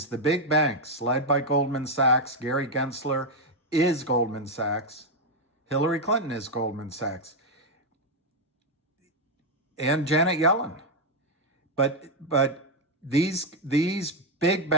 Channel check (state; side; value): normal; both; correlation 0.03